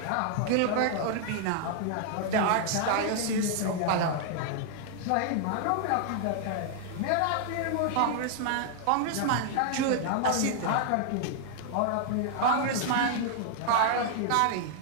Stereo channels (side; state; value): both; different; correlation 0.00